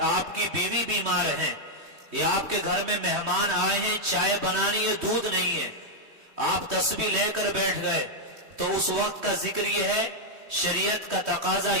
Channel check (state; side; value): late; left; 3.2 ms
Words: آپ کی بیوی بیمار ہیں، یا آپ کے گھر میں مہمان آئے ہیں، چائے بنانی ہے، دودھ نہیں ہے، آپ تسبیح لے کر بیٹھ گئے، تو اس وقت کا ذکر یہ ہے، شریعت کا تقاضا